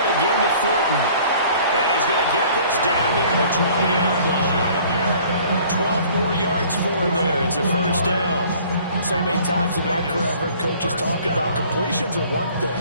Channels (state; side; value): inverted; both; correlation -0.53